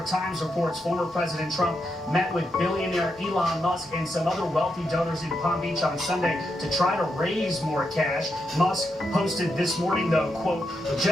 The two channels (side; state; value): both; normal; correlation 0.83